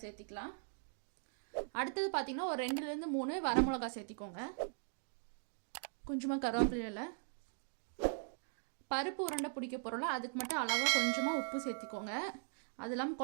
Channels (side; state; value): left; silent; digital silence